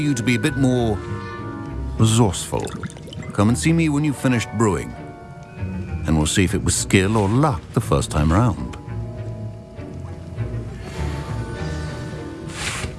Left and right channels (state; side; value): identical; both; correlation 1.00